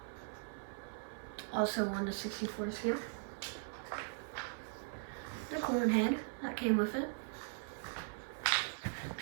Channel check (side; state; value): left; silent; 51 dB below the other